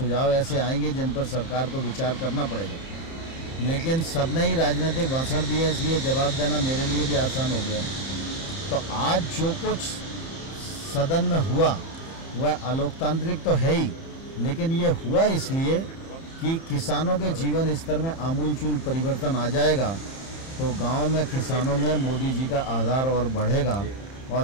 ऐसे आएंगे जिन पर सरकार को विचार करना पड़ेगा, लेकिन सबने ही राजनीतिक भाषण दिए, इसलिए जवाब देना मेरे लिए भी आसान हो गया। तो आज जो कुछ सदन में हुआ वह अलोकतांत्रिक तो है ही, लेकिन ये हुआ इसलिए कि किसानों के जीवन स्तर में आमूलचूल परिवर्तन आ जाएगा तो गांव में किसानों में मोदी जी का आधार और बढ़ेगा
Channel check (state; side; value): late; right; 30 ms